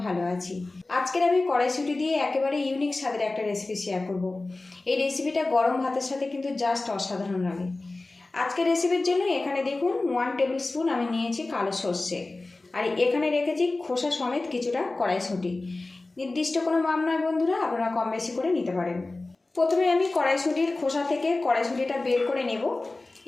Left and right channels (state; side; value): quieter; right; 3.2 dB